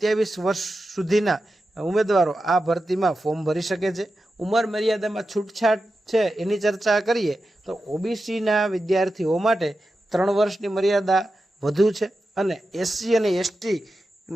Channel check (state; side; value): normal; both; correlation 0.91